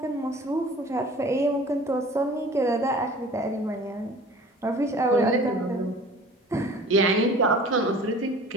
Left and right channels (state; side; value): normal; both; correlation 0.45